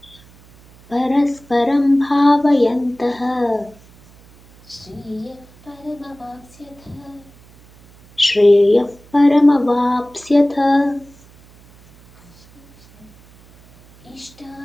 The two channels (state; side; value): noise; right; hum, 26 dB below the sound